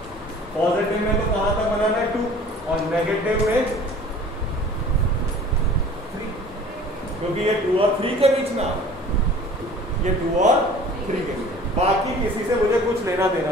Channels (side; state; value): both; normal; correlation 0.47